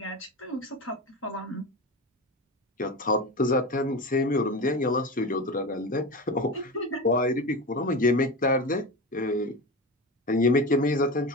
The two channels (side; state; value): both; normal; correlation 0.25